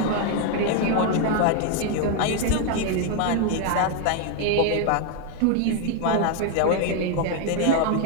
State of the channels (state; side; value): different; both; correlation 0.01